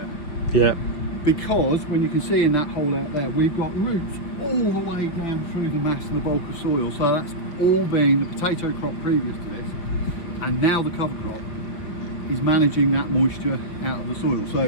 Yeah. because when you can see in that hole out there, we've got roots all the way down through the mass and the bulk of soil. So that's all been the potato crop previous to this, and now the cover crop is managing that moisture out of the soil.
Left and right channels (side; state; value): right; late; 5.7 ms